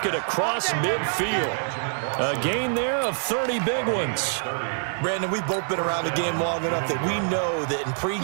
it across midfield. A gain there of 30 big ones. Brandon, we've both been around the game long enough that we know that in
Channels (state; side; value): silent; left; 62 dB below the other